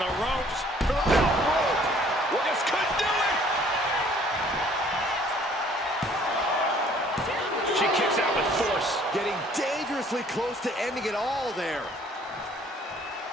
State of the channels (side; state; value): both; normal; correlation 0.58